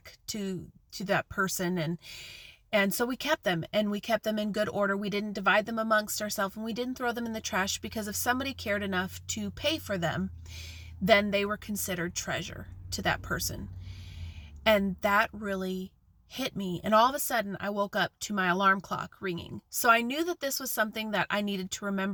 to that person. And so we kept them, and we kept them in good order. We didn't divide them amongst ourselves, and we didn't throw them in the trash, because if somebody cared enough to pay for them, then they were considered treasure to that person. And that really hit me. And all of a sudden I woke up to my alarm clock ringing. So I knew that this was something that I needed to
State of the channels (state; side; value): identical; both; correlation 1.00